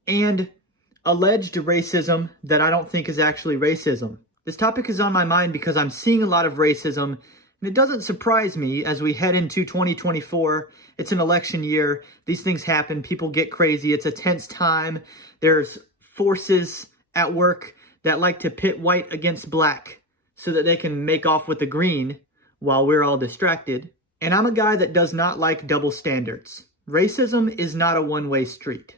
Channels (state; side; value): normal; both; correlation 0.22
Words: and alleged racism that I don't think is actually racism. This topic is on my mind because I'm seeing a lot of racism, and it doesn't surprise me as we head into 2024. It's an election year. These things happen. People get crazy. It's a tense time. There's forces at work that like to pit white against black so that they can make off with the green while we're all distracted. And I'm a guy that does not like double standards. Racism is not a one-way street.